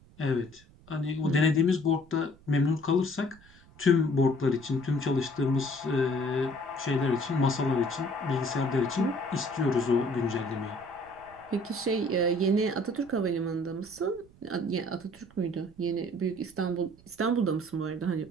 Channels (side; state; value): right; noise; rumble, 25 dB below the sound